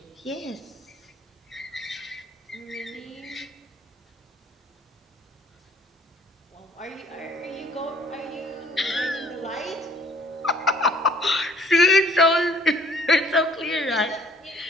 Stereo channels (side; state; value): both; normal; correlation 0.58